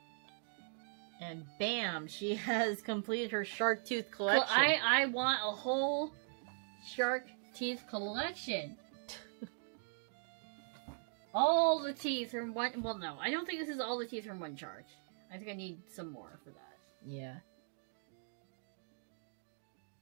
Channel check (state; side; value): silent; left; digital silence